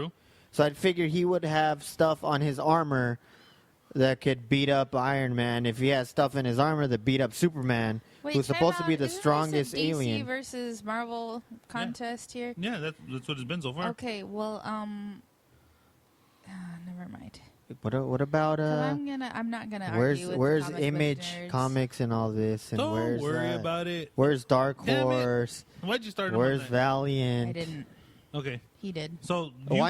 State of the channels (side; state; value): both; identical; correlation 1.00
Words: So I'd figure he would have stuff on his armor that could beat up Iron Man. If he has stuff in his armor that beat up Superman, Wait, who's time supposed to be out. the Isn't this a strongest DC alien. versus Marvel contest here? Yeah, that's what it's been so far. Okay, well, never mind. What about 'Cause I'm not gonna argue with where's comic book Image nerds. Comics and all this, and Don't where's worry about it. where's Dark Damn it. Horse? Why'd you start him on Where's that? Valiant? I didn't. Okay, He did. so